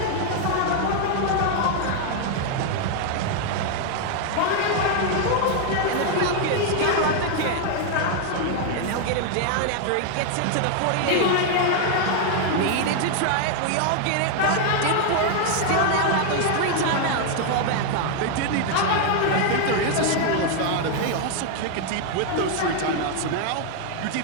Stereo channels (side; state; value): both; different; correlation 0.00